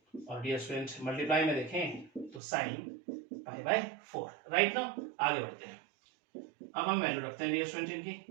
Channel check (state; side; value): drops out; left; at 2.4 s